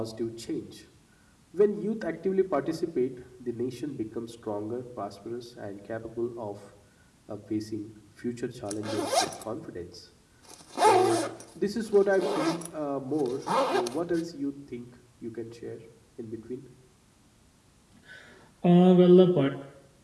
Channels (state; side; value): identical; both; correlation 1.00